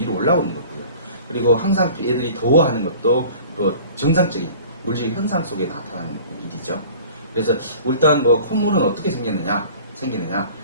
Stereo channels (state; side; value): inverted; both; correlation -0.45